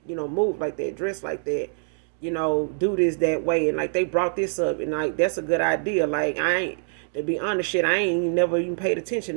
move like that, dress like that, do this that way. And like they brought this up, and like that's a good idea. Like to be honest, shit, I ain't never even paid attention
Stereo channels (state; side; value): silent; left; digital silence